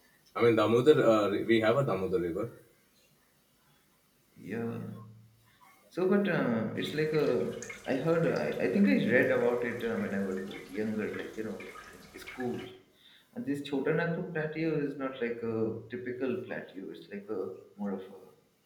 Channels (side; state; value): both; identical; correlation 1.00